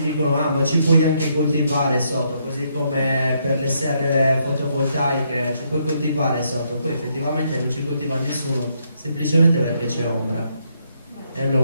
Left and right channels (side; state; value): both; inverted; correlation -0.75